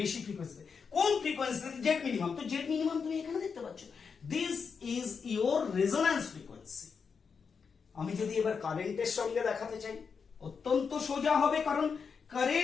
বেশি ফ্রিকোয়েন্সি। কোন ফ্রিকোয়েন্সিতে, জেড মিনিমাম। তো জেড মিনিমাম তুমি এখানে দেখতে পাচ্ছ, this is your resonance frequency. আমি যদি এবার কারেন্টের সঙ্গে দেখাতে চাই, অত্যন্ত সোজা হবে, কারণ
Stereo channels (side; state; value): right; quieter; 5.8 dB